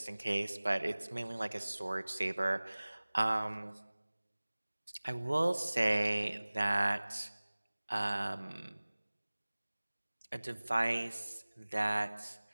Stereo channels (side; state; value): both; inverted; correlation -1.00